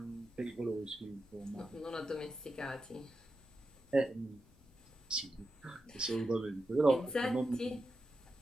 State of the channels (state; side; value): noise; left; rumble, 26 dB below the sound